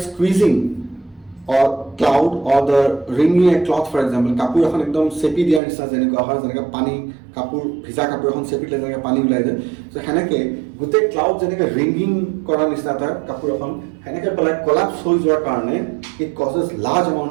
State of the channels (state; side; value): drops out; left; at 5.6 s